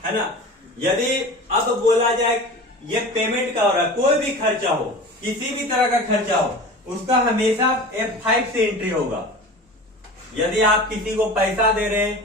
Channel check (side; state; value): both; normal; correlation 0.35